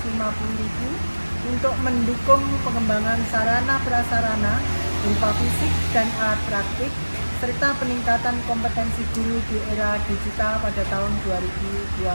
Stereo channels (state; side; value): inverted; both; correlation -1.00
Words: untuk mendukung pengembangan sarana prasarana berupa fisik dan alat praktik serta peningkatan kompetensi guru di era digital pada tahun